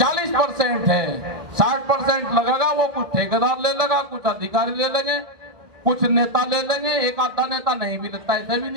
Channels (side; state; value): left; late; 1.8 ms